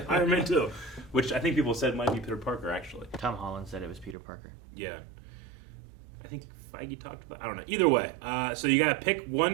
Iron Man 2, which I think people said might be Peter Parker, actually. Tom Holland said it was Peter Parker. Yeah. I think Feige talked about. I don't know. Either way, so you got to pick one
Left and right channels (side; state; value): left; drops out; at 4.2 s